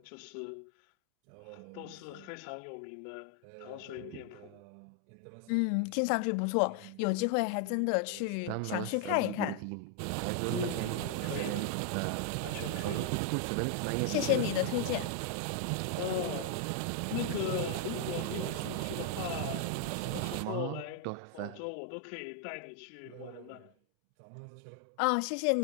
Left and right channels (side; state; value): both; different; correlation 0.00